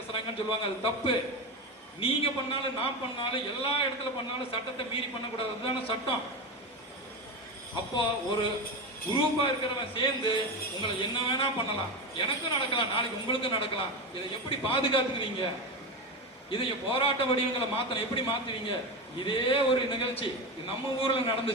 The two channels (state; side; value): normal; both; correlation 0.18